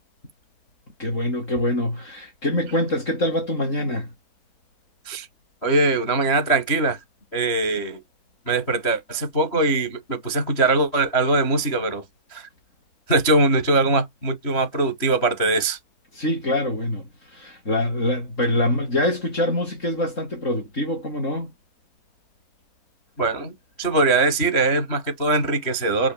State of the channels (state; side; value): late; right; 3.1 ms